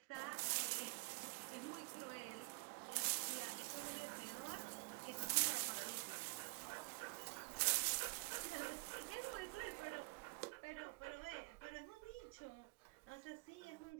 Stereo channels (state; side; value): quieter; left; 29.7 dB